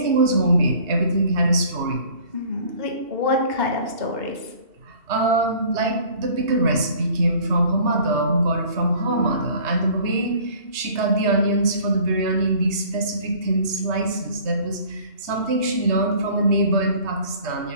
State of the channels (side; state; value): left; late; 2.8 ms